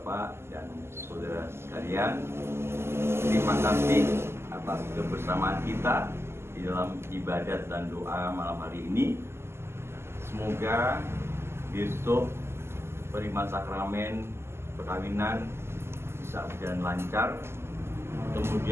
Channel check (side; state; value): left; late; 0.12 ms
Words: dan saudara sekalian, terima kasih atas kebersamaan kita di dalam ibadat dan doa malam hari ini. Semoga besok penerimaan sakramen perkawinan bisa berjalan lancar,